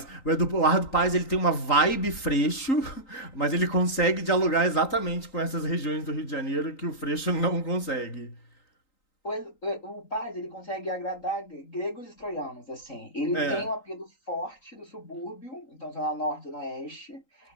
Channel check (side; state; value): right; late; 3.9 ms